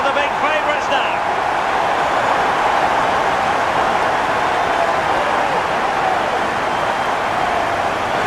the big favourites now.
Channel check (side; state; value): both; identical; correlation 1.00